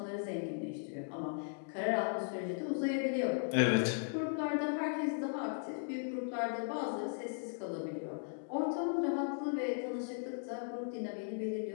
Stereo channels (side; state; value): right; silent; digital silence